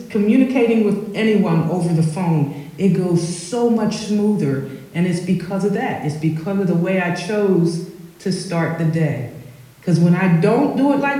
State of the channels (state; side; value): identical; both; correlation 1.00